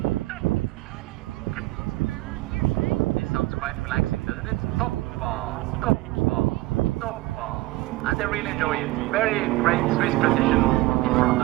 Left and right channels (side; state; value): left; quieter; 19.2 dB